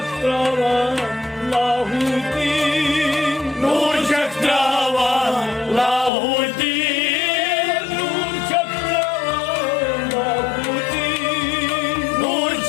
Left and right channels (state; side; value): drops out; right; at 6.1 s